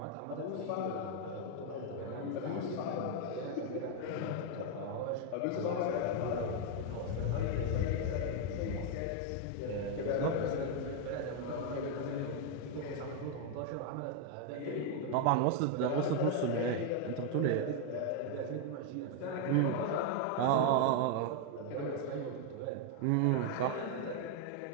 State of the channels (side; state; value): both; different; correlation 0.00